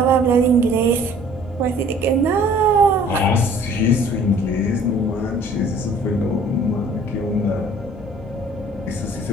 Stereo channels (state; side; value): normal; both; correlation 0.53